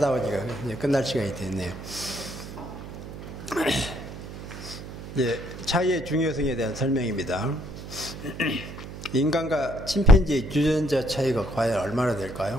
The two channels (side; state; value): right; noise; hum, 11 dB below the sound